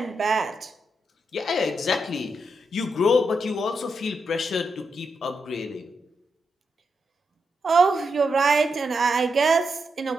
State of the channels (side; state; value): both; normal; correlation 0.84